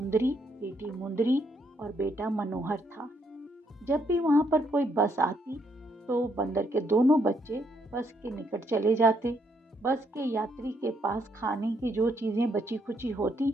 बेटी मुंदरी और बेटा मनोहर था। जब भी वहां पर कोई बस आती तो बंदर के दोनों बच्चे बस के निकट चले जाते। बस के यात्री के पास खाने की जो चीजें बची खुची होती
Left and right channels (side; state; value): both; normal; correlation 0.73